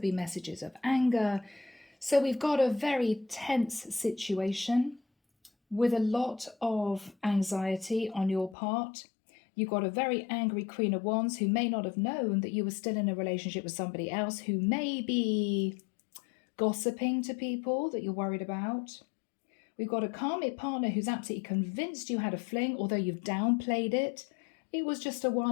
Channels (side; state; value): right; drops out; at 8.6 s